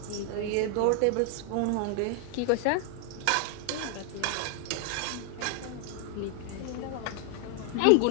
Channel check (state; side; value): different; both; correlation 0.00